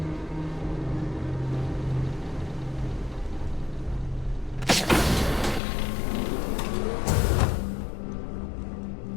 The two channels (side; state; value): right; drops out; at 5.6 s